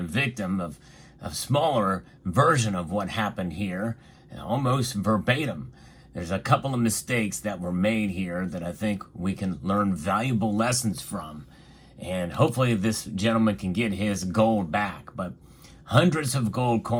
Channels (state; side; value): identical; both; correlation 1.00